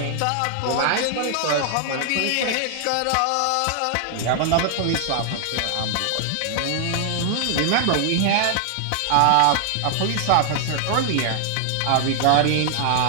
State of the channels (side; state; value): both; different; correlation 0.00